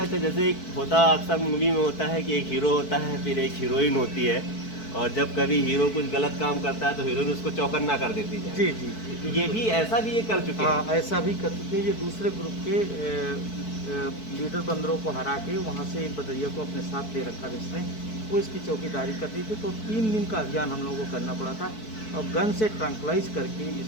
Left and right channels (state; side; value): late; right; 4.6 ms